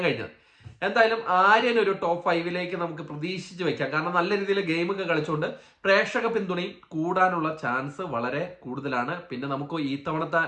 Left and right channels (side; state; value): both; identical; correlation 1.00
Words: കഴിഞ്ഞത്. എന്തായാലും ആര്യൻ ഒരു ടോപ്പ് 5ലേക്ക് നമുക്ക് പ്രതീക്ഷിച്ച് വെക്കാം. കാരണം നല്ല രീതിയിൽ ഗെയിമൊക്കെ കളിച്ചുകൊണ്ട് പ്രേക്ഷക പിന്തുണയും കൂടാനുള്ള ചാൻസ് വളരെ കൂടുതലാണ്. പിന്നെ നമുക്ക് ഈ തവണത്തെ